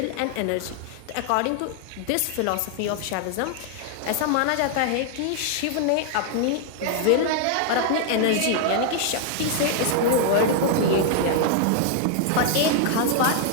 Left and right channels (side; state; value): both; different; correlation 0.00